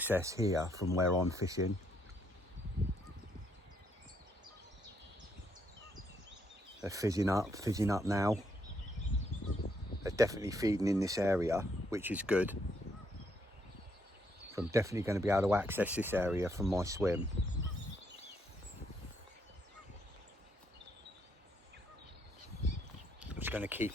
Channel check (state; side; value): normal; both; correlation 0.73